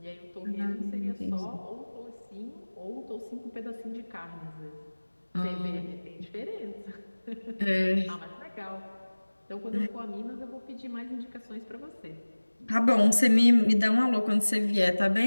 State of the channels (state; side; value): inverted; both; correlation -1.00